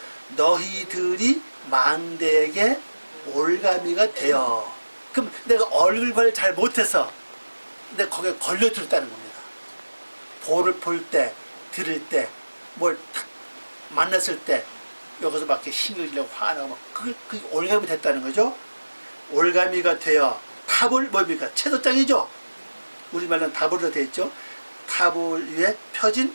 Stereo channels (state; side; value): inverted; both; correlation -1.00